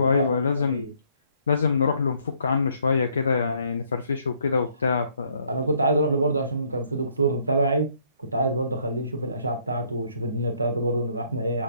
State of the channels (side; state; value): both; inverted; correlation -0.67